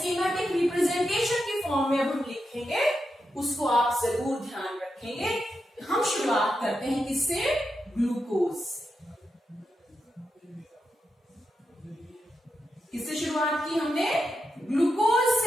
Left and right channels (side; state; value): both; normal; correlation 0.87